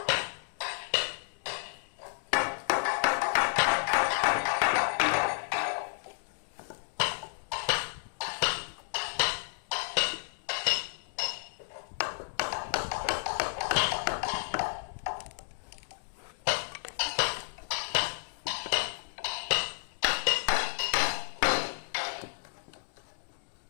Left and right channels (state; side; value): silent; right; digital silence